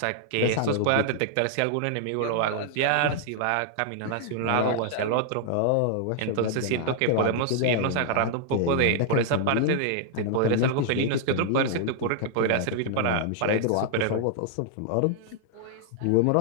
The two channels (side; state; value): both; different; correlation -0.01